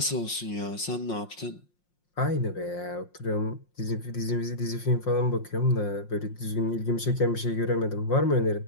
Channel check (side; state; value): right; late; 5.6 ms